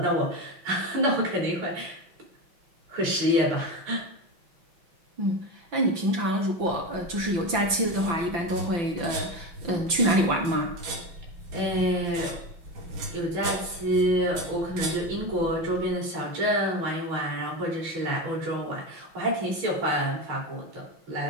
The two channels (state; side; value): late; left; 5.9 ms